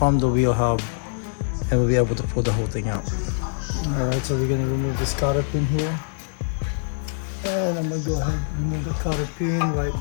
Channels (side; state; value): right; silent; digital silence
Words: the wheel hub, and we'll be able to pull the whole thing out. Alright, so we're gonna remove this cotter pin here, and I'm gonna go ahead and remove the cotter pin right